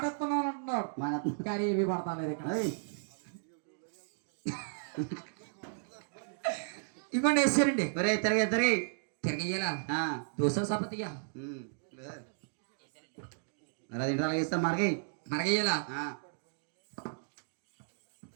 ఇస్తున్నాను అంటున్నాడు మన కానీ ఇవి పడతాలేదు ఇక్కడ ఏయ్ ఇవ్వండి వేసారండి ఒరే తిరిగి తిరిగి తిరగయ్యాలా ఆ, దోశ సపతిగా ఉమ్. మరి అది ఇంట్లో ఇస్తాం మరికి మరగయ్యాలా ఆ.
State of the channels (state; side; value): silent; left; digital silence